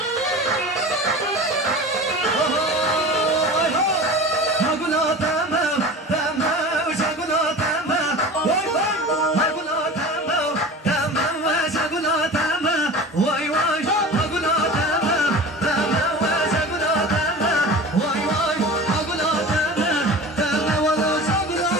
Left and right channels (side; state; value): both; normal; correlation 0.35